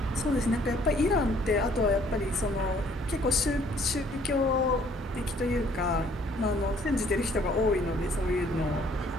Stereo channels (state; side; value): normal; both; correlation 0.61